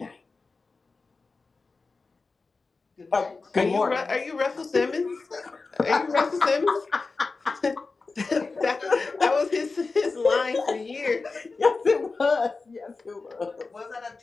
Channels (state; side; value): quieter; right; 4.0 dB